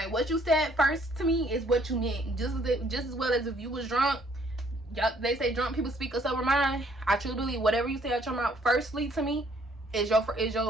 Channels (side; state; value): both; normal; correlation 0.64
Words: what you said first to me is what you meant. Just as well as if you was drunk. Y'all, they say drunk people speak a sober mind. I truly believe whatever you say out your mouth firstly to me is